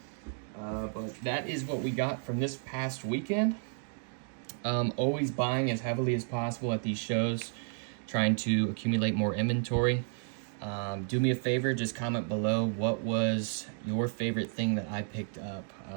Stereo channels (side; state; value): left; silent; 56 dB below the other